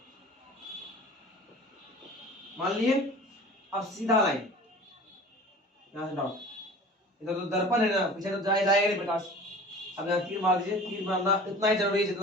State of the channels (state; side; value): normal; both; correlation 0.41